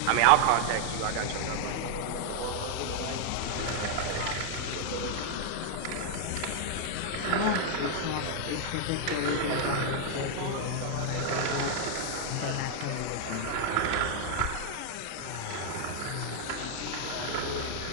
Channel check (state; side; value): different; both; correlation 0.00